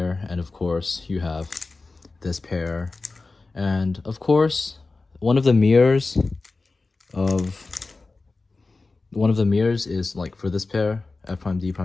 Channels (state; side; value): quieter; right; 3.7 dB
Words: and of course you have this pair, and of course one of the mirrors is like for this pair, F prime D